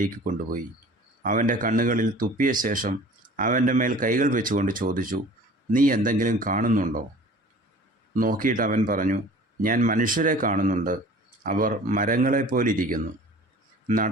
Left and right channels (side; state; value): both; normal; correlation 0.45